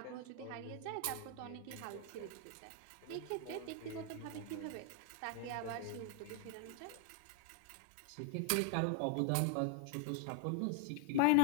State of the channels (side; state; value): both; different; correlation 0.00